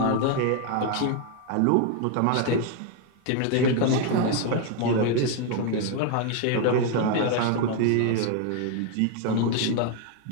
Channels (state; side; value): different; both; correlation 0.01